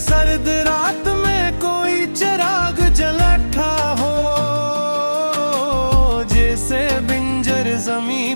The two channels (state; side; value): inverted; both; correlation -1.00